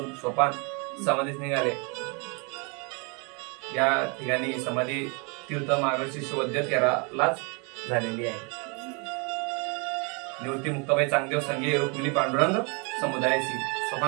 सोपान समाधीस निघाले. या ठिकाणी समाधी तीर्थ मार्गशीर्ष वैद्य 13लाच झालेली आहे. निवृत्ती मुक्ताबाई चांगदेव संगे रुक्मिणी पांडुरंग समुदायाची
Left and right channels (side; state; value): left; quieter; 33.1 dB